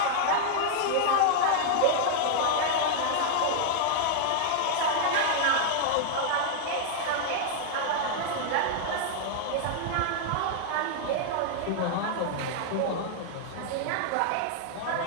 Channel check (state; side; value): different; both; correlation -0.01